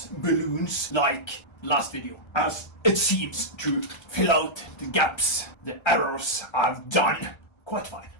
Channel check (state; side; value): late; right; 1.3 ms